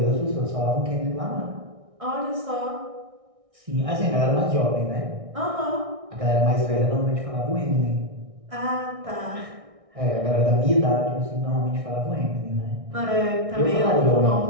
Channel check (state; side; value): late; left; 1.6 ms